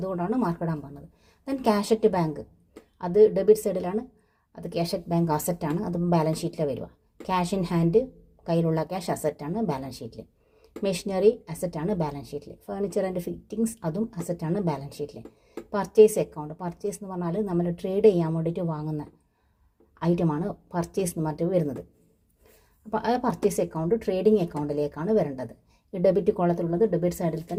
അതുകൊണ്ടാണ് മാർക്ക് ഇടാൻ പറഞ്ഞത്. ദെൻ ക്യാഷ് അറ്റ് ബാങ്ക്, അത് ഡെബിറ്റ് സൈഡിലാണ്. അത് ക്യാഷ് അറ്റ് ബാങ്ക് അസറ്റാണ്. അതും ബാലൻസ് ഷീറ്റിൽ വരിക. ക്യാഷ് ഇൻ ഹാൻഡ്, കയ്യിലുള്ള ക്യാഷ് അസറ്റാണ് ബാലൻസ് ഷീറ്റിൽ. മെഷീനറി അസറ്റാണ് ബാലൻസ് ഷീറ്റിൽ. ഫർണിച്ചർ ആൻഡ് ഫിറ്റിംഗ്സ് അതും അസറ്റാണ് ബാലൻസ് ഷീറ്റിൽ. പർച്ചേസ് അക്കൗണ്ട്, പർച്ചേസ് എന്ന് പറഞ്ഞാൽ നമ്മൾ ട്രേഡ് ചെയ്യാൻ വേണ്ടിയിട്ട് വാങ്ങുന്ന ഐറ്റമാണ് പർച്ചേസ് എന്ന് പറഞ്ഞിട്ട് വരുന്നത്. അപ്പോൾ ആ പർച്ചേസ് അക്കൗണ്ട് ട്രേഡിംഗ് അക്കൗണ്ടിലേക്കാണ് വരേണ്ടത്. ഈ ഡെബിറ്റ് കോളത്തിലുള്ളത് ഡെബിറ്റ് സൈഡിൽ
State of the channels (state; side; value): identical; both; correlation 1.00